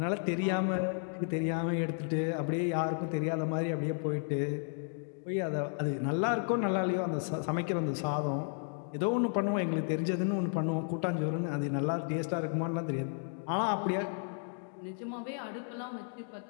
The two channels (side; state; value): right; silent; 56 dB below the other